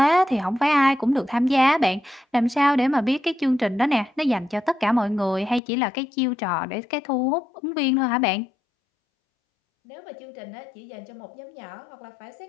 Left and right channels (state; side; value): drops out; right; at 5.6 s